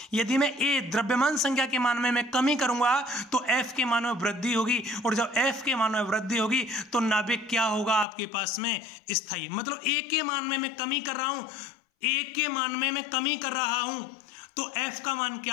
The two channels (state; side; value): drops out; right; at 8.1 s